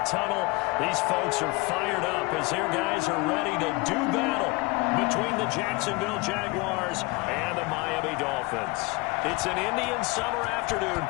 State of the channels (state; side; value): quieter; right; 24.6 dB